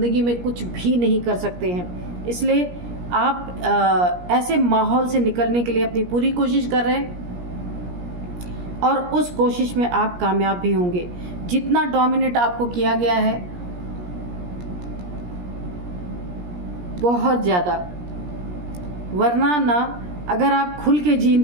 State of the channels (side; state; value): left; late; 17 ms